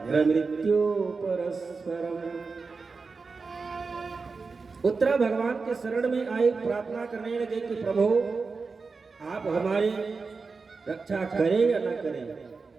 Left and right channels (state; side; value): quieter; left; 4.5 dB